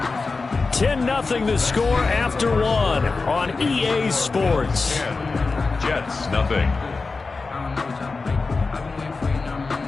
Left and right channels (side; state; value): right; quieter; 4.0 dB